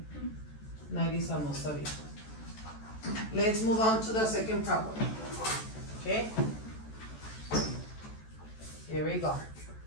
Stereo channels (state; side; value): late; right; 14 ms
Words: 90 almost of it. Let's move on to the second problem. Okay? Here we go.